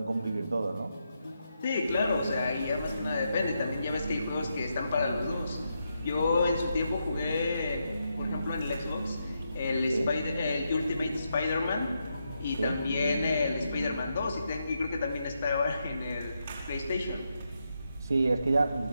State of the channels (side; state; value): both; inverted; correlation -0.83